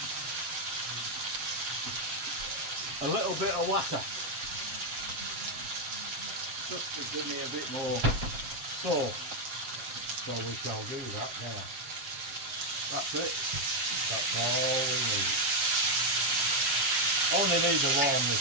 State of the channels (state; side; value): late; left; 7.7 ms